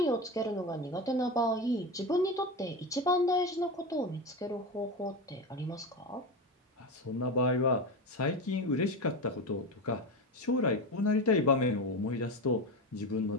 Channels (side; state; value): both; normal; correlation 0.20